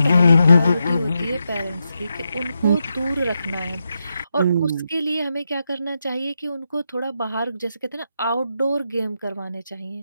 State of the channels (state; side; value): inverted; both; correlation -0.85